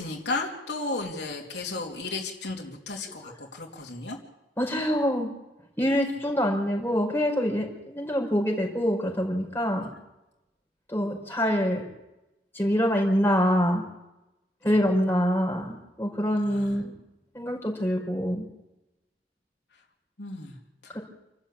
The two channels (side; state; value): both; normal; correlation 0.76